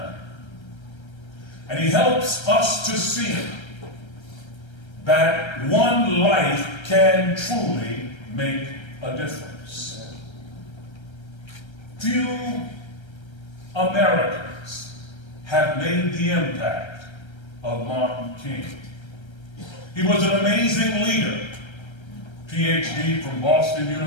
And he helps us to see that one life can truly make a difference. Few Americans have made the impact of Martin King. He was an amazing leader. PhD from Boston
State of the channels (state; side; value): late; right; 1.3 ms